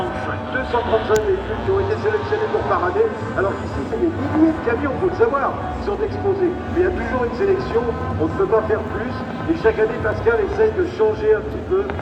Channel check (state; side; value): identical; both; correlation 1.00